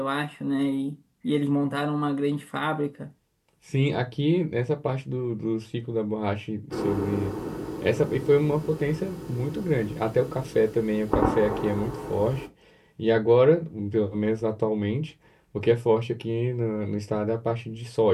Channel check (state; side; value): identical; both; correlation 1.00